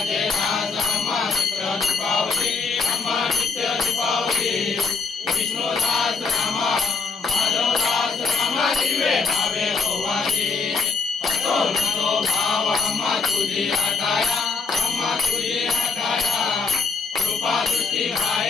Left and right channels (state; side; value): quieter; right; 5.2 dB